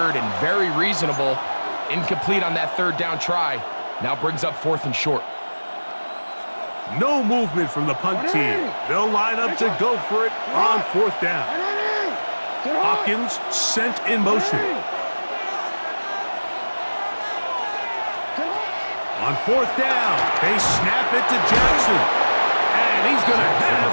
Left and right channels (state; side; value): inverted; both; correlation -1.00